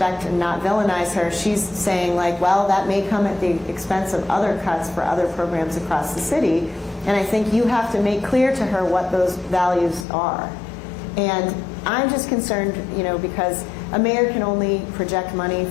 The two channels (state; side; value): drops out; right; at 10.1 s